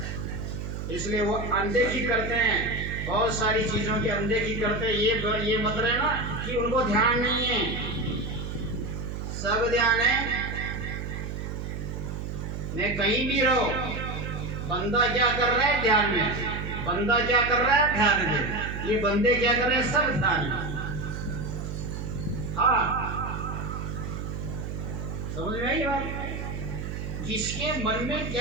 इसलिए वो अनदेखी करते हैं, बहुत सारी चीजों की अनदेखी करते हैं। ये मत रहना कि उनको ध्यान नहीं है, सब ध्यान है। मैं कहीं भी रहो, बंदा क्या कर रहा है ध्यान में, बंदा क्या कर रहा है ध्यान में, ये बंदे क्या कर रहे हैं सब ध्यान में। हाँ, समझ में आई बात? जिसके मन में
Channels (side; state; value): right; noise; hum, 6 dB below the sound